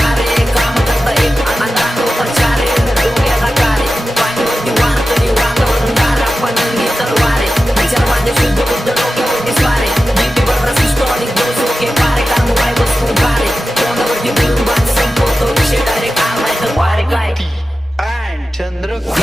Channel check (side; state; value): both; normal; correlation 0.93